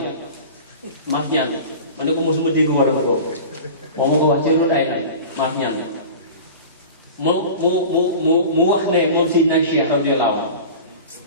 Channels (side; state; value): both; inverted; correlation -0.36